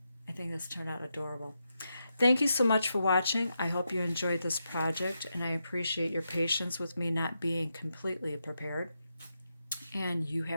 I think this turned out adorable. Thank you so much for watching. I hope you enjoyed this project, and I appreciate your patience with me not being completely prepared. And you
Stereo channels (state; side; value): inverted; both; correlation -0.85